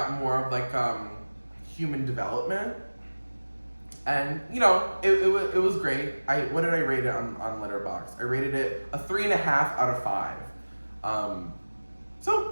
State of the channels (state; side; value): inverted; both; correlation -1.00